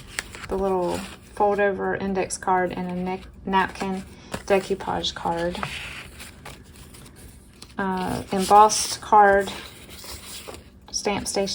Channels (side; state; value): both; identical; correlation 1.00